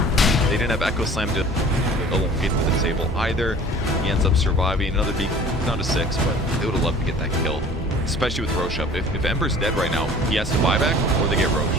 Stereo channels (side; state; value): both; normal; correlation 0.47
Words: They didn't have Echo Slam to elongate to the table either. He ends up surviving. Another beat down to 6, but they would have loved to get that kill. Especially with Roche up. If Ember's dead right now, he has to buy back or they get Roche.